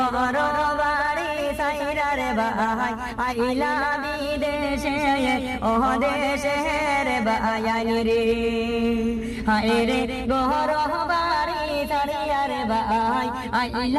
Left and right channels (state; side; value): identical; both; correlation 1.00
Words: বাড়ি সাইরার ভাই আইলা বিদেশে ও দেশের বায়ানি রে। হায়রে গর বাড়ি সাইরার ভাই